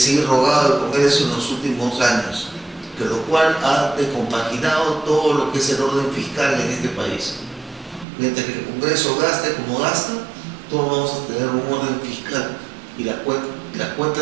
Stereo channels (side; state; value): left; drops out; at 8.1 s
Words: ha rogado al Congreso en los últimos años, que lo cual ha descompaginado todo lo que es el orden fiscal en este país. Mientras que el Congreso gaste como gasta, todos vamos a tener un orden fiscal y las